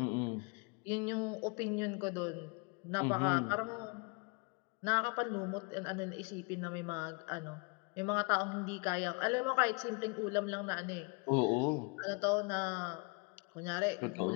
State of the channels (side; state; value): right; quieter; 32.3 dB